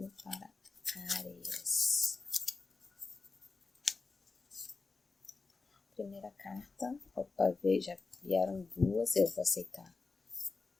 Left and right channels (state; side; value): quieter; right; 4.1 dB